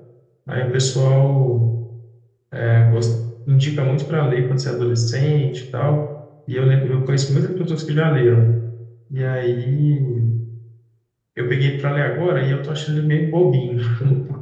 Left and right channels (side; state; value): both; identical; correlation 1.00